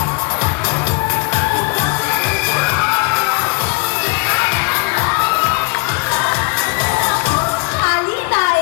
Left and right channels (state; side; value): quieter; right; 31.3 dB